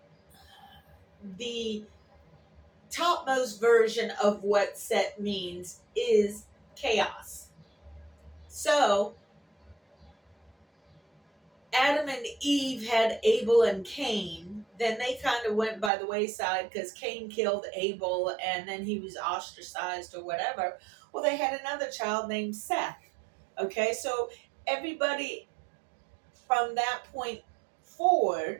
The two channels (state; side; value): drops out; left; at 15.9 s